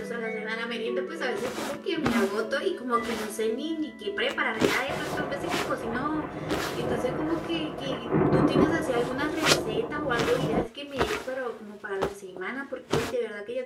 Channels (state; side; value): identical; both; correlation 1.00